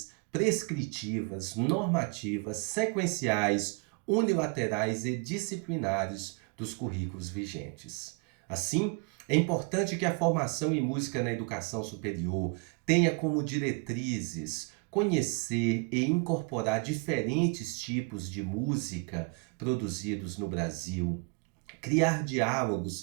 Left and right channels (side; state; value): left; quieter; 33.2 dB